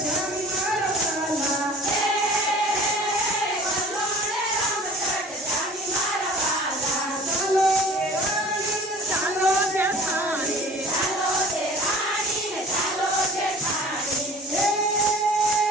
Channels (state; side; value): normal; both; correlation 0.45